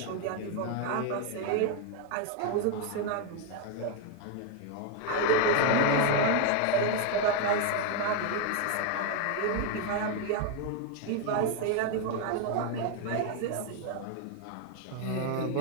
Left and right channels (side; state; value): both; different; correlation 0.01